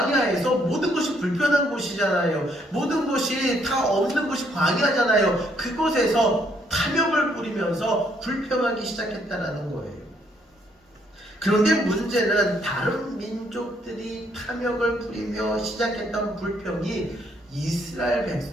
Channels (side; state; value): both; normal; correlation 0.70